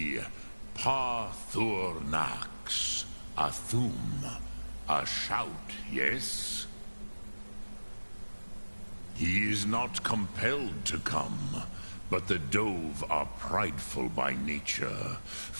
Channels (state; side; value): inverted; both; correlation -1.00